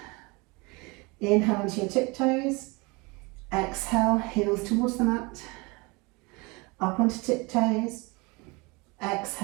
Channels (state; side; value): quieter; left; 26.8 dB